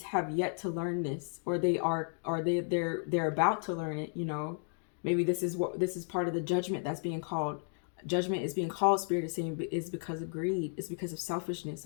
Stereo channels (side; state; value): right; silent; 55 dB below the other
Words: have yet to learn this, or they're about to learn it. You know, maybe this is part of the judgment that's being called. Judgment is being called, Spirit is saying, is because of greed. It's because of selfishness.